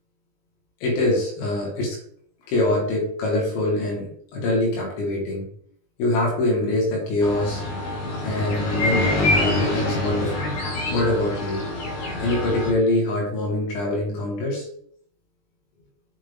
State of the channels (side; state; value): right; late; 20 ms